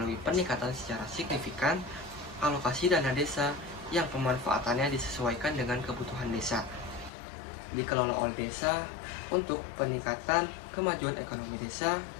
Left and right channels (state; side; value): drops out; right; at 7.1 s